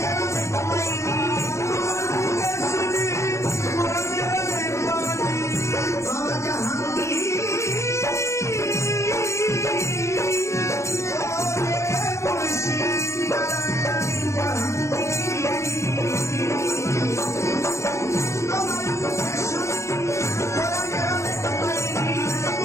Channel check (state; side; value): late; right; 0.14 ms